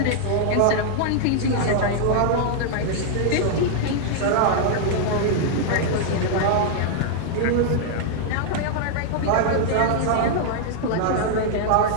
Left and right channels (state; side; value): different; both; correlation -0.01